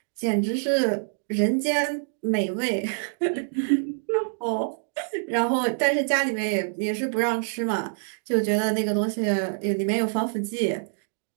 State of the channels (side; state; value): left; silent; digital silence